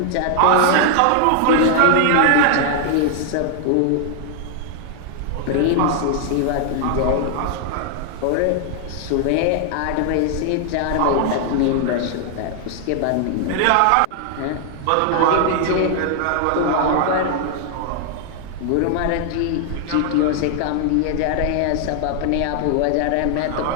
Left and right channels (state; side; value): different; both; correlation 0.00